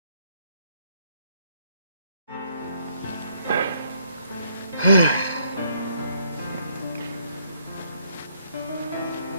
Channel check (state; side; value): inverted; both; correlation -0.70